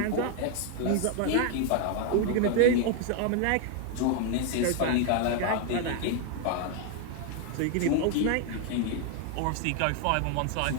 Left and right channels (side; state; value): both; different; correlation 0.01